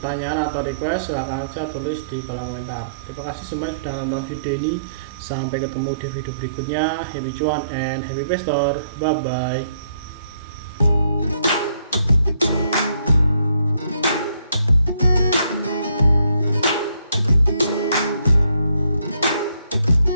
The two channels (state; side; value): inverted; both; correlation -0.69